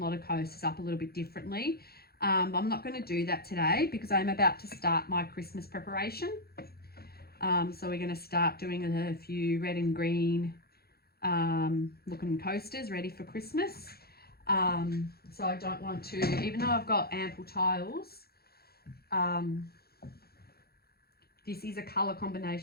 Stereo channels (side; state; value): right; late; 0.45 ms